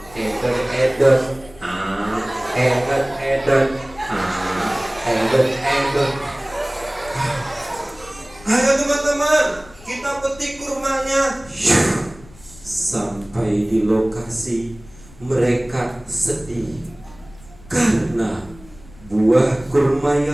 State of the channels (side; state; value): left; noise; rumble, 22 dB below the sound